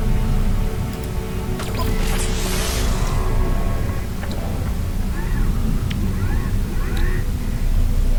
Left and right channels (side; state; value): both; identical; correlation 1.00